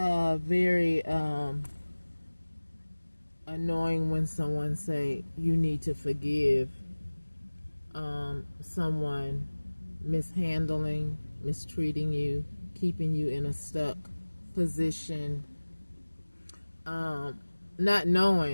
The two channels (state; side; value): inverted; both; correlation -1.00